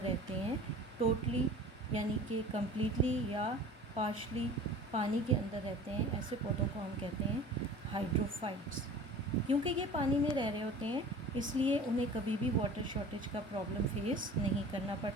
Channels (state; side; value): normal; both; correlation 0.42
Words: रहते हैं, टोटली यानी कि कम्प्लीटली या पार्शली पानी के अंदर रहते हैं, ऐसे पौधों को हम कहते हैं हाइड्रोफाइट्स. क्योंकि ये पानी में रह रहे होते हैं इसलिए उन्हें कभी भी वाटर शॉर्टेज का प्रॉब्लम फेस नहीं करना